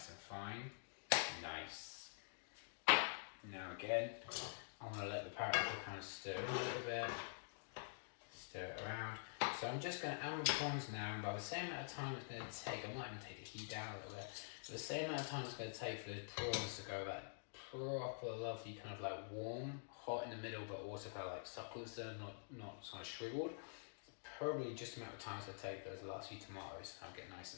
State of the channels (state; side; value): silent; right; digital silence